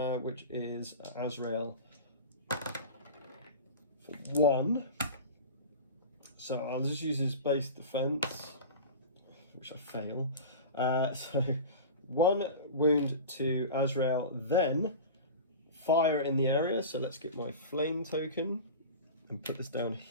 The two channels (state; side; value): inverted; both; correlation -0.31